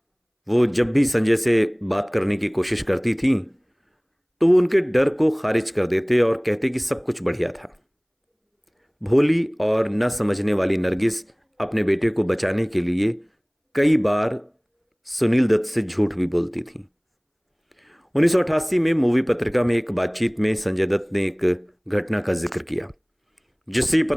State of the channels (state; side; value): identical; both; correlation 1.00